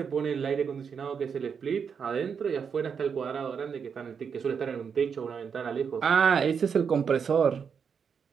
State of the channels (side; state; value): left; quieter; 6.6 dB